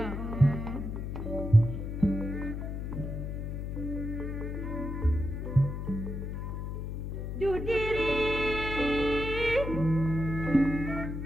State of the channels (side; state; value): left; noise; hum, 4 dB below the sound